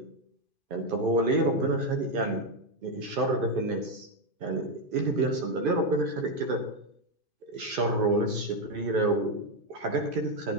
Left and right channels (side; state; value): left; late; 2.5 ms